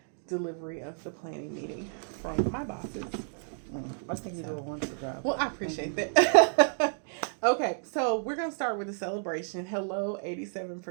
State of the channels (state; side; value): silent; left; digital silence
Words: delivery of the planning meeting from my bosses. I think you do a wonderful job. Well, I appreciate that. Okay, so we're gonna start with the celebration. Hello,